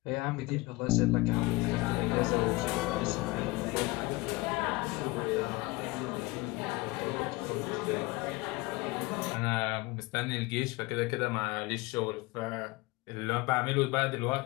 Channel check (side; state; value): right; quieter; 22.1 dB